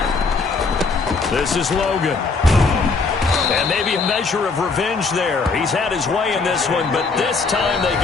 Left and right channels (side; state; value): right; quieter; 4.3 dB